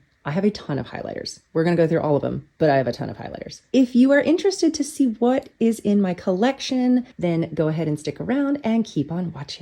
I have a ton of highlighters. We're going to go through all of them, but I have a ton of highlighters. If you are interested to see what is in my collection, then go ahead and stick around and keep on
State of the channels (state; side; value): identical; both; correlation 1.00